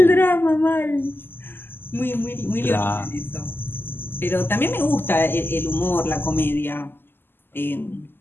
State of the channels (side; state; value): right; late; 0.099 ms